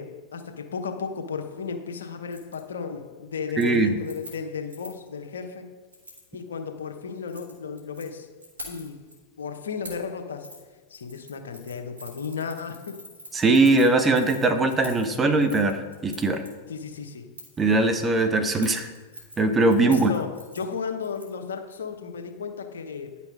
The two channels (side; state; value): both; normal; correlation 0.33